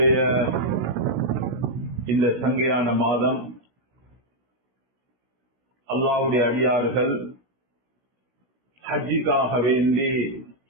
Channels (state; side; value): late; left; 17 ms